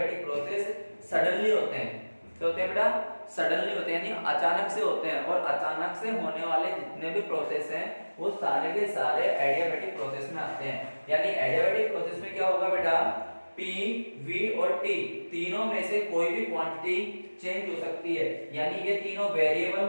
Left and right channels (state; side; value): inverted; both; correlation -1.00